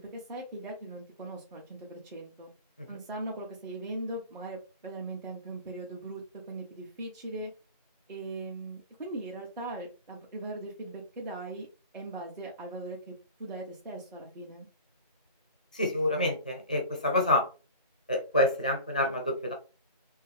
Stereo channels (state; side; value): inverted; both; correlation -0.35